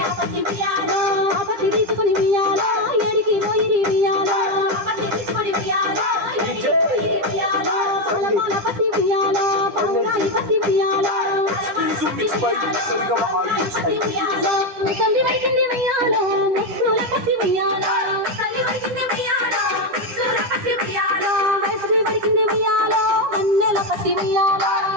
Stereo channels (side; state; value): left; late; 9.9 ms